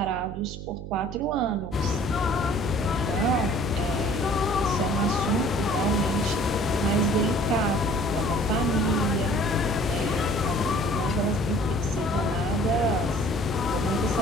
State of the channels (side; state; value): right; noise; hum, 9 dB below the sound